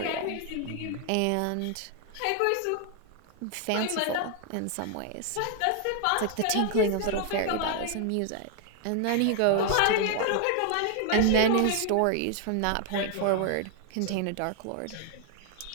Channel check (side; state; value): both; different; correlation 0.00